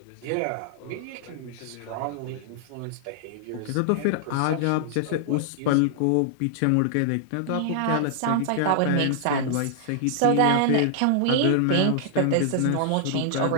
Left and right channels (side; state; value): both; different; correlation -0.01